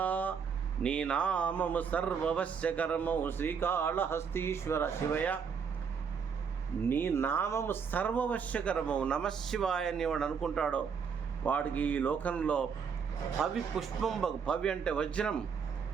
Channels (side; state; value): left; quieter; 6.4 dB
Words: నీ నామము సర్వవశ్యకరమౌ శ్రీకాళహస్తీశ్వర. శివయ్య నీ నామము సర్వవశ్యకరమవు. నమశివాయ అని వాడు అనుకుంటాడో వాడికి ఈ లోకంలో పవి పుష్పంబగు. పవి అంటే వజ్రం,